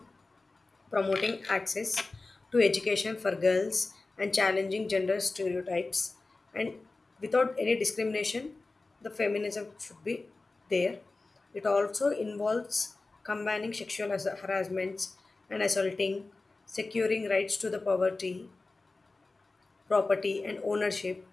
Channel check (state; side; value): quieter; right; 3.5 dB